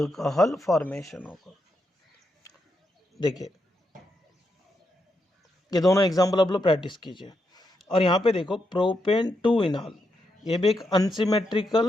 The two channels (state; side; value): normal; both; correlation 0.82